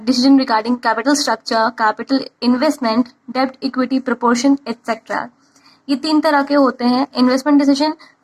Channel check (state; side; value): identical; both; correlation 1.00